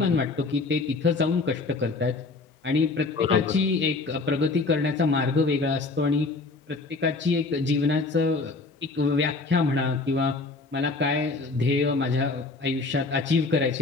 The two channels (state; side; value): quieter; right; 3.7 dB